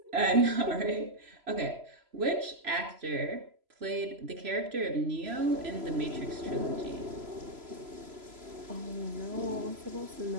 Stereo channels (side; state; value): left; late; 3.0 ms